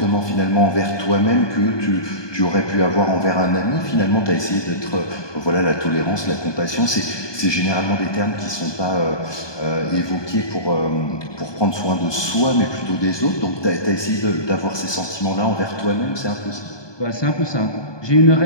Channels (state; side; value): late; right; 1.2 ms